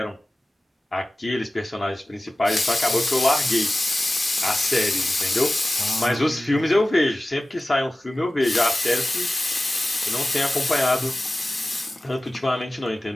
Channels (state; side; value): normal; both; correlation 0.97